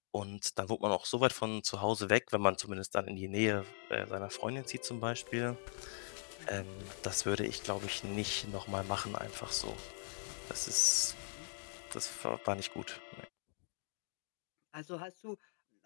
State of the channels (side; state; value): right; silent; digital silence